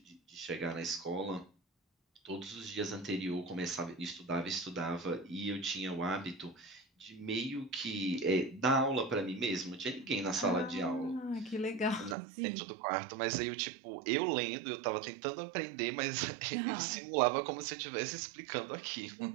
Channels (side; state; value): left; drops out; at 12.2 s